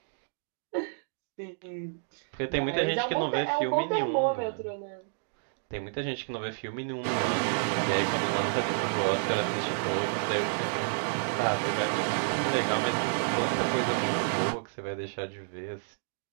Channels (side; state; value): left; silent; digital silence